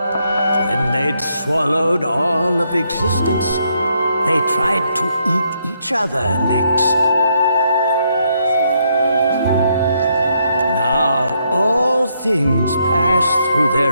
When they'd swallowed all of existence, they tried to eat each other next. Now all things pass through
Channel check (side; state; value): both; inverted; correlation -0.75